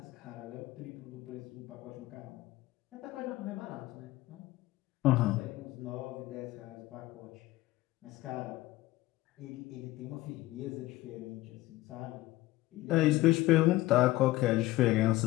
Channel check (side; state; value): right; quieter; 17.7 dB